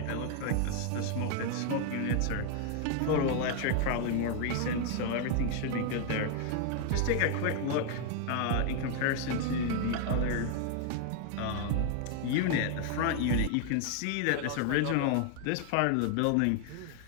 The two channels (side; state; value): both; different; correlation 0.00